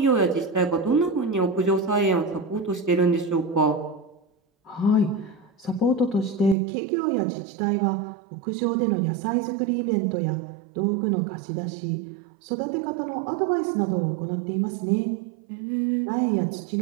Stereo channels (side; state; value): left; drops out; at 6.6 s